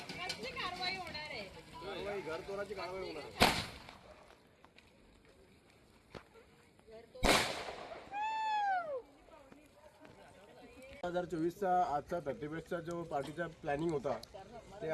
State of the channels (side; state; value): both; identical; correlation 1.00